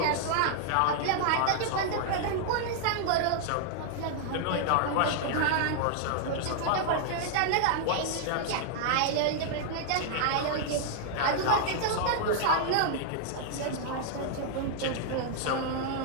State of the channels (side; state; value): both; different; correlation -0.01